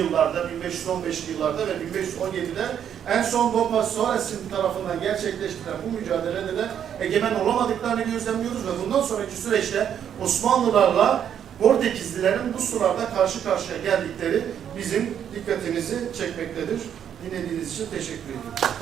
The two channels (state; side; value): quieter; left; 9.1 dB